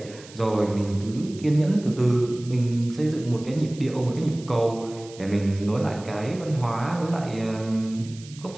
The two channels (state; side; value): noise; right; hiss, 20 dB below the sound